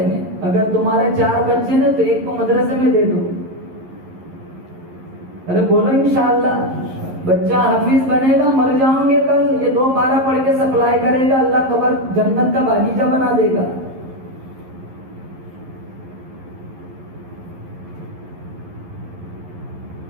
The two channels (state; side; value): late; left; 11 ms